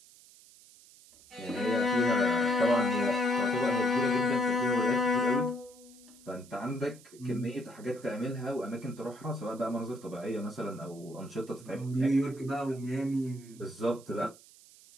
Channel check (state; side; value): noise; right; hiss, 23 dB below the sound